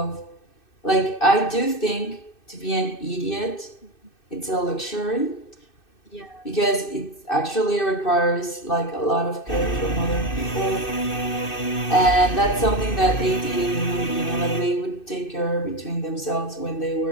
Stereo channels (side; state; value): right; late; 2.6 ms